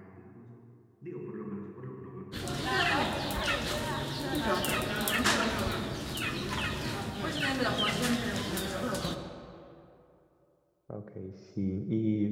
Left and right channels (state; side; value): identical; both; correlation 1.00